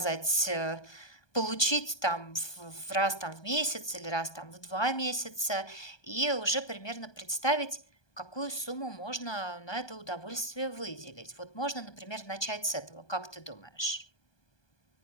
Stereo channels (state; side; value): late; right; 1.2 ms